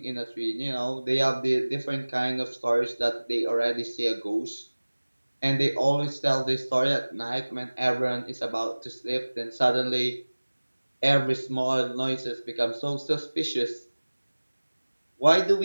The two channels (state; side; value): inverted; both; correlation -1.00